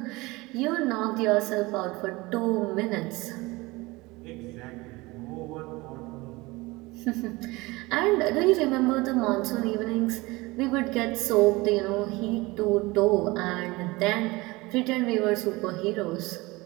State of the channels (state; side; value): quieter; left; 22.4 dB